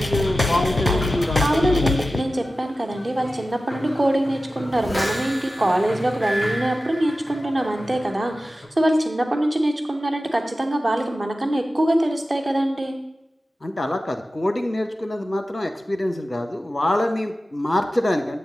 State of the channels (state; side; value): normal; both; correlation 0.94